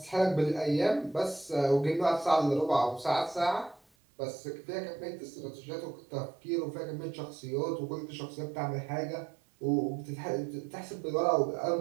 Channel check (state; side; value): drops out; left; at 3.8 s